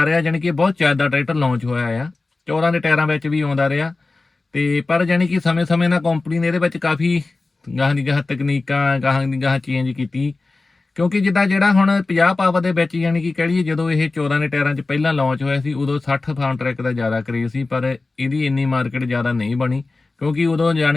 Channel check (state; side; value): quieter; right; 3.5 dB